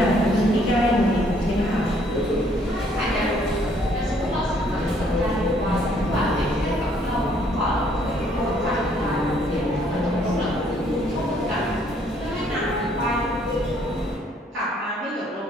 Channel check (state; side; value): normal; both; correlation 0.65